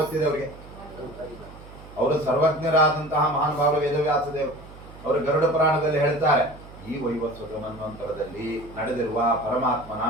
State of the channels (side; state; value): right; noise; hum, 18 dB below the sound